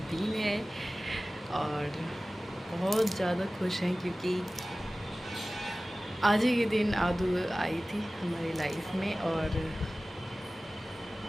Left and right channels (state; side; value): normal; both; correlation 0.97